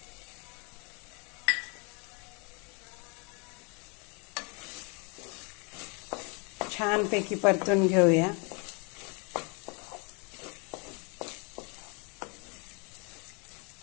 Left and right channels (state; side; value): quieter; right; 32.9 dB